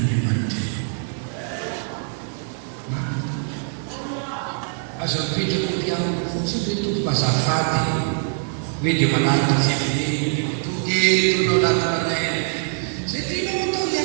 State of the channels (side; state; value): left; silent; 63 dB below the other